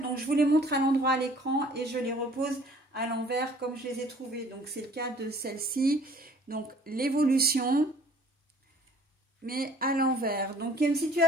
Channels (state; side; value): normal; both; correlation 0.54